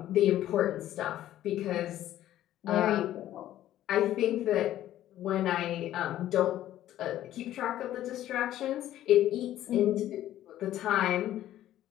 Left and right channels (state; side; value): quieter; right; 13.0 dB